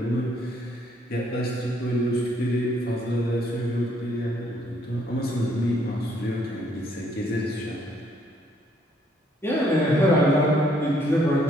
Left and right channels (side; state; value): both; normal; correlation 0.68